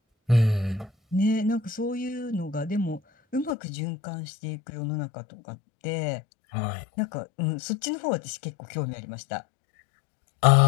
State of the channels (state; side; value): drops out; right; at 3.5 s